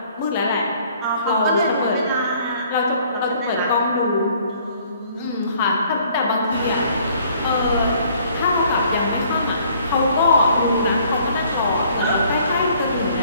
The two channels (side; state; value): both; inverted; correlation -0.59